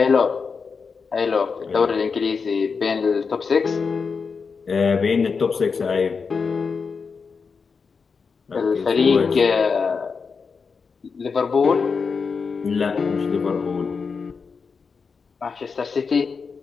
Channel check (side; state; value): right; quieter; 5.3 dB